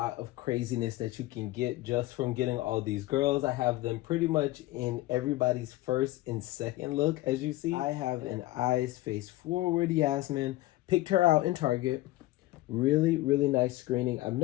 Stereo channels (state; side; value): quieter; right; 17.9 dB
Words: of craziness that you can get just from getting all these girls. I have them pretty much in everybody's first and second look, as you see. I have an eyes face forward Yasmin. Picked her out in Target. Really, really nice screening. I've